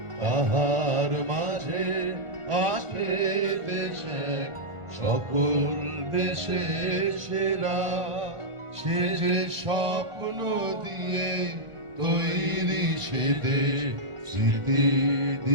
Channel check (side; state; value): left; late; 1.4 ms